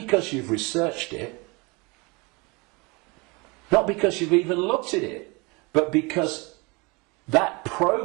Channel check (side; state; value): left; quieter; 27.4 dB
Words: you've researched it, not because you've even looked at it, but because that